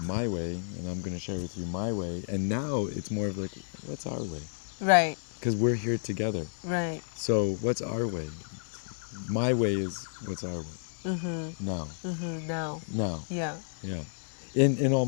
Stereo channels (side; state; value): right; silent; 57 dB below the other